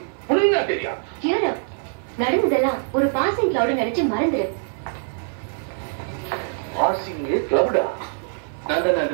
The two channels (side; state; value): left; silent; 63 dB below the other